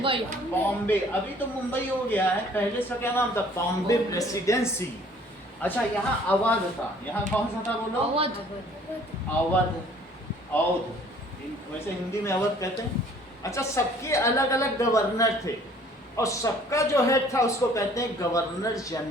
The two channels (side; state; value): both; normal; correlation 0.55